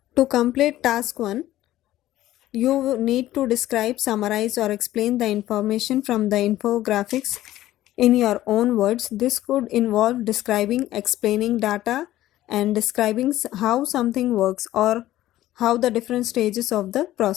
To complete task 1, you need to describe, summarize or explain the information from the infographics in your own words. This could involve describing, explaining data and describing how something works or how the different stages of the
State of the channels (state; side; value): quieter; right; 14.5 dB